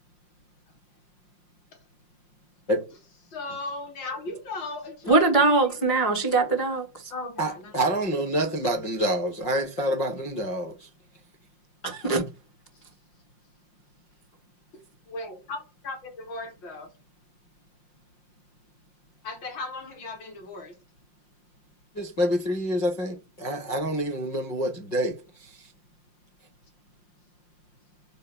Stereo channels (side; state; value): right; late; 5.6 ms